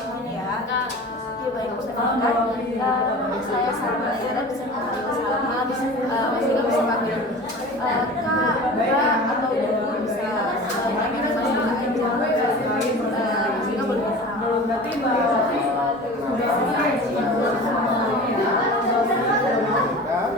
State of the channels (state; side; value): normal; both; correlation 0.37